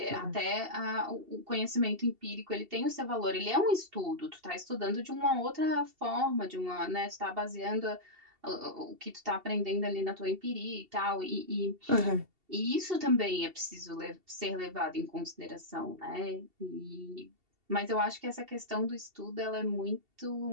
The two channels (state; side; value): late; left; 2.7 ms